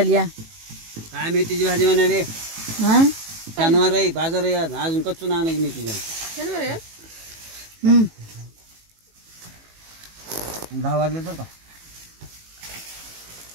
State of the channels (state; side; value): late; left; 18 ms